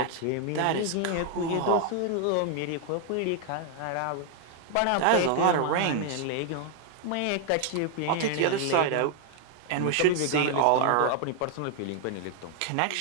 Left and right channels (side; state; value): both; different; correlation 0.00